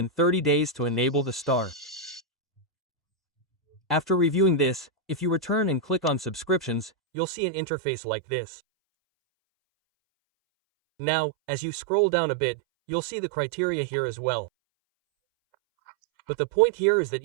30 days to enable the star. After reviewing this, if you return and click on subscriptions, you'll see an interface like this. Now, as you scroll down a bit, you'll see the criteria here as well. But the point here is that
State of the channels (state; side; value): drops out; left; at 6.9 s